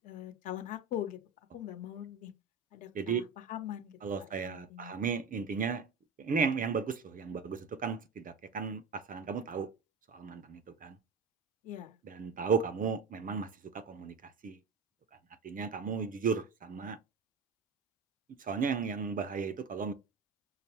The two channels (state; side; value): quieter; left; 4.3 dB